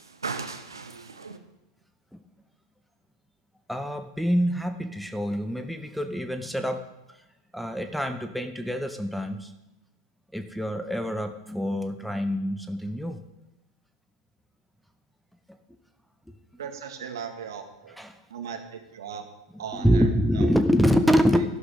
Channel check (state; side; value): normal; both; correlation 0.85